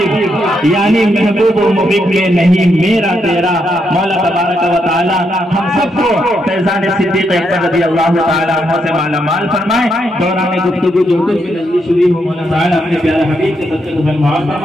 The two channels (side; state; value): both; normal; correlation 0.79